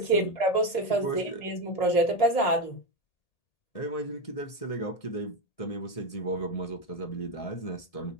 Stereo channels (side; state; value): right; late; 1.8 ms